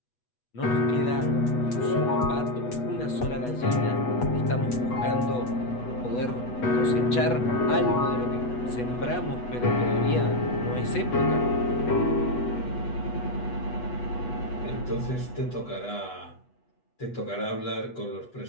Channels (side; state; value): right; late; 8.2 ms